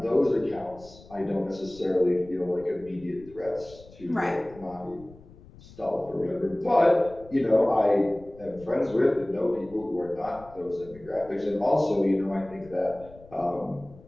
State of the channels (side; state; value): left; noise; rumble, 22 dB below the sound